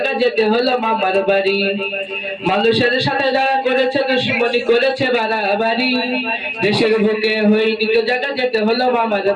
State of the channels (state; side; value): identical; both; correlation 1.00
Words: যেতে হলো মামার বাড়ি। মানুষের সাথে যারা করেছে দুশ্মনী, করেছে বাড়াবাড়ি, দেশের বুকে হয়নি তো জায়গা, যেতে হলো মামার